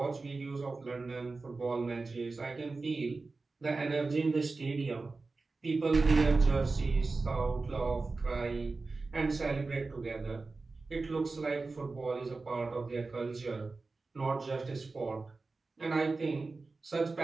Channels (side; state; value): left; quieter; 3.8 dB